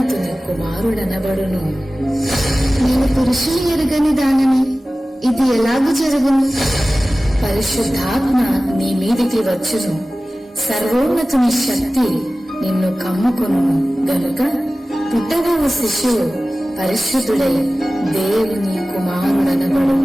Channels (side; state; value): both; normal; correlation 0.97